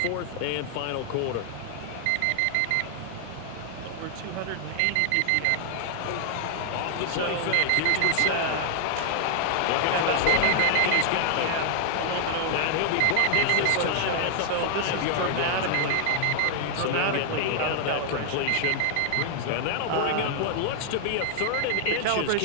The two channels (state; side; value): different; both; correlation 0.00